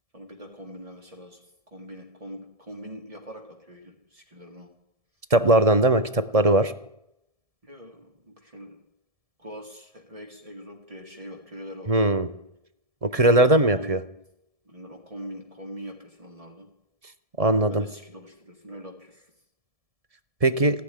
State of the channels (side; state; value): left; late; 1.7 ms